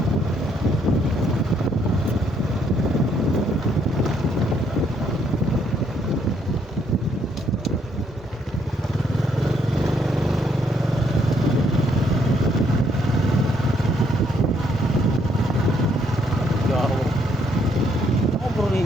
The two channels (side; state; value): both; normal; correlation 0.70